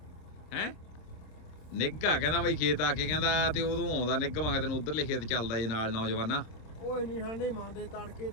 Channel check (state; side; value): late; right; 26 ms